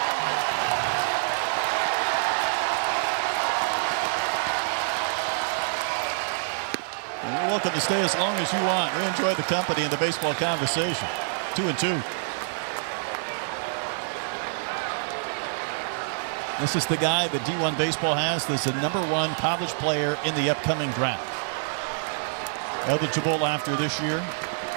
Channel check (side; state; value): left; silent; digital silence